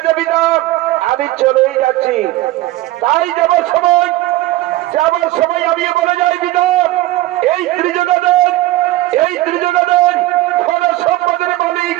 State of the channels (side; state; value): left; quieter; 16.9 dB